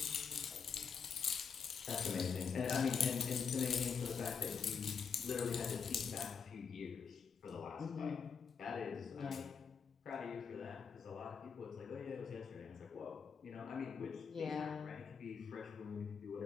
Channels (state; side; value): quieter; right; 6.2 dB